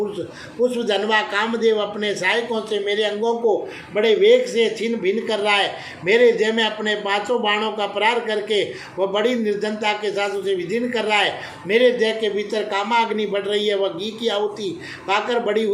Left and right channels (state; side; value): identical; both; correlation 1.00